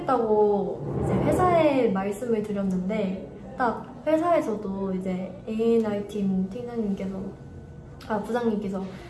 이제 회사에 말씀을 드렸는데, 딱 회사에서도 이제 A&R 팀 팀장님께서 부장님께서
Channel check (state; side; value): identical; both; correlation 1.00